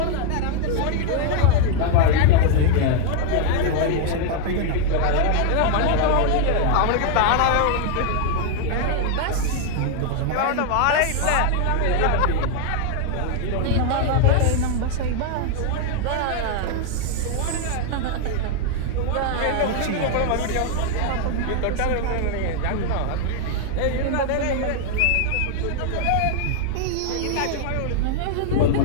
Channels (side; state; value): both; different; correlation 0.00